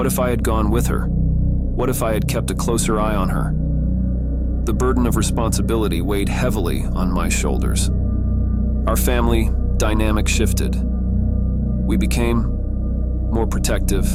if I had gone with her? What if I had kept a closer eye on her? The burden of responsibility weighed heavily on my shoulders. Our family dynamic shifted. We became more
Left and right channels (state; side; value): identical; both; correlation 1.00